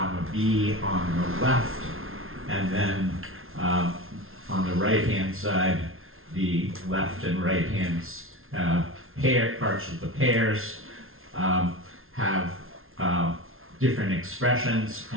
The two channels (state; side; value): late; left; 0.61 ms